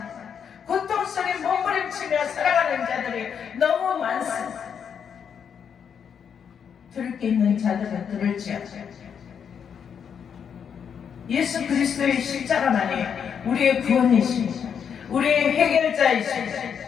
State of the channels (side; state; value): right; quieter; 7.5 dB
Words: 고통 속에 몸부림치며 살아가는 자들이 너무 많습니다. 들을 게 있는 자들은 들을지어다. 예수 그리스도의 십자가만이 우리의 구원이십니다. 우리의 해결자이십니다.